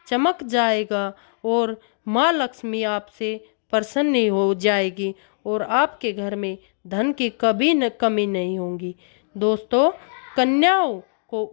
चमक जाएगा और माँ लक्ष्मी आपसे प्रसन्न हो जाएगी और आपके घर में धन की कभी न कमी नहीं होगी। दोस्तों, कन्याओं को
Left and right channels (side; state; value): right; silent; digital silence